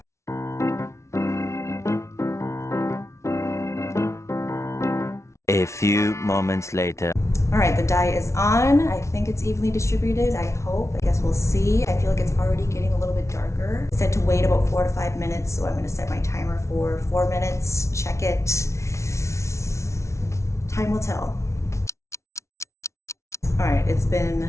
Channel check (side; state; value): right; late; 0.13 ms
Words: A few moments later. All right, the dye is on. I think it's evenly distributed, I hope. I guess we'll see. I feel like it's already getting a little bit darker. It said to wait about 4 to 5 minutes, so I'm gonna set my timer for 4 minutes, check it. Time will tell. All right, it's